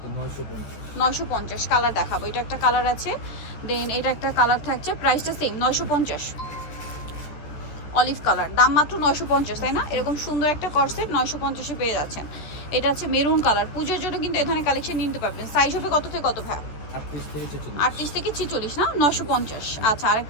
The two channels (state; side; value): late; right; 14 ms